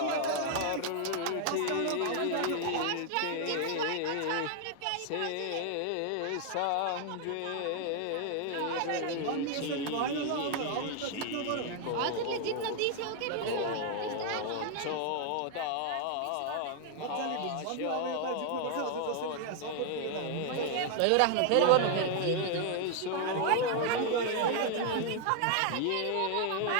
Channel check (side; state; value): both; different; correlation 0.00